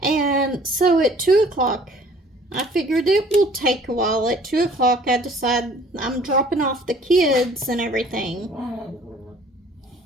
And so at 2 o'clock, I figured it will take a while. At 2 o'clock, I decide I'm dropping off the kids and everything.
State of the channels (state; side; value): normal; both; correlation 0.54